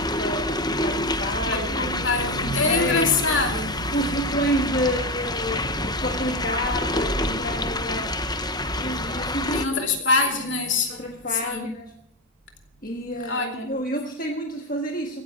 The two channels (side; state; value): both; normal; correlation 0.14